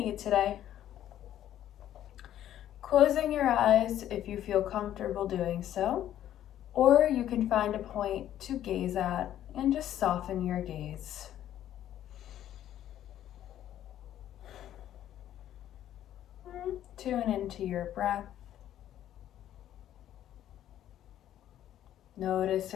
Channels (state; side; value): quieter; right; 11.7 dB